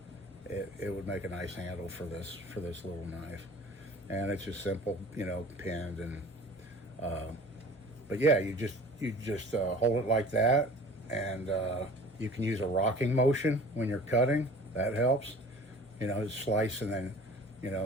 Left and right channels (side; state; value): both; normal; correlation 0.45